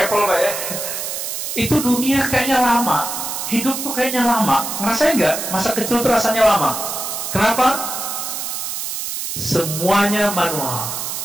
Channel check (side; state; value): right; noise; hiss, 4 dB below the sound